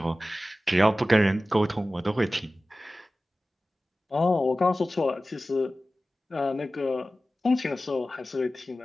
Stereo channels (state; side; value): normal; both; correlation 0.96